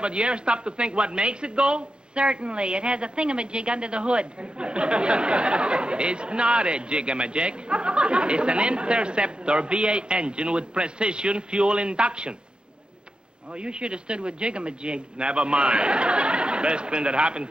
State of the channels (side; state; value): left; late; 0.051 ms